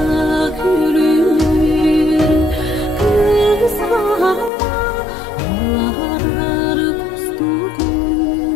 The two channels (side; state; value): right; drops out; at 4.5 s